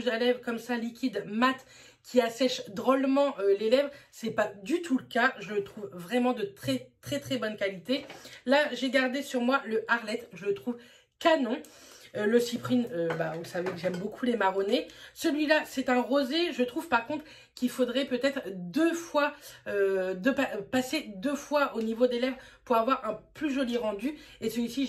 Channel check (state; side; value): identical; both; correlation 1.00